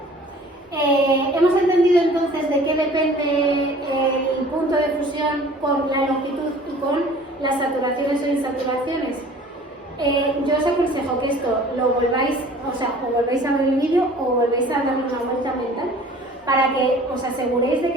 Hemos entendido entonces de qué depende el punto de fusión con la longitud y con las saturaciones o insaturaciones. Yo os aconsejo que esto lo volváis, o volvéis a ver el vídeo o volvéis a darle una vuelta mental para que os aseguréis de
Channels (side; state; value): both; normal; correlation 0.48